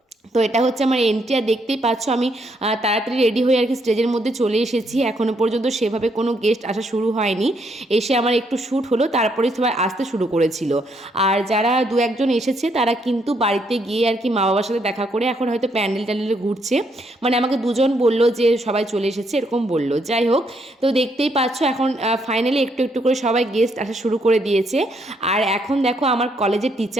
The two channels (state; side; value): normal; both; correlation 0.73